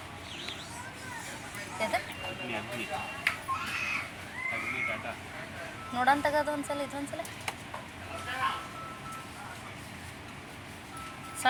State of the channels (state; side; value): identical; both; correlation 1.00